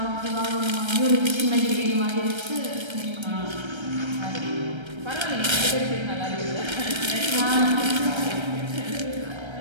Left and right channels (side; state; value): left; late; 1.3 ms